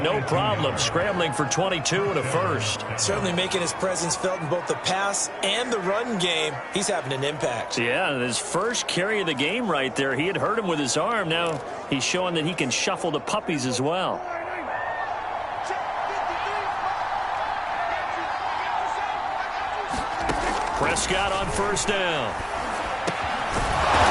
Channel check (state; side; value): identical; both; correlation 1.00